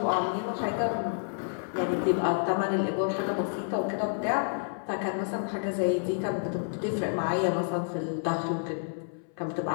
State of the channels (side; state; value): right; silent; 58 dB below the other